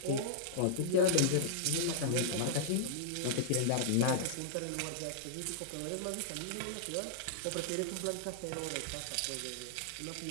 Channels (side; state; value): both; different; correlation -0.02